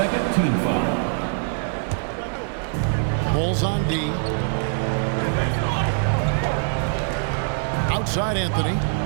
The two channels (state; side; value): silent; left; digital silence